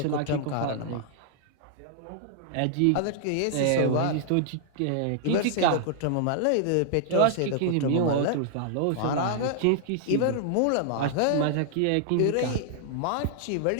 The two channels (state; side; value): different; both; correlation -0.01